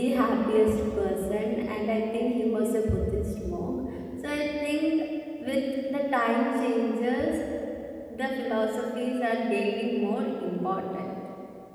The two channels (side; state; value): both; identical; correlation 1.00